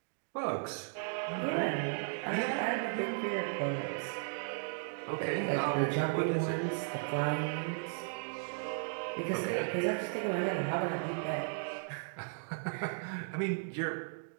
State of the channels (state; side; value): silent; left; digital silence